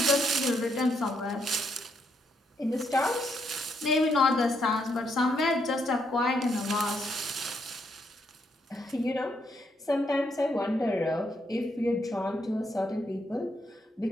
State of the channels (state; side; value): normal; both; correlation 0.76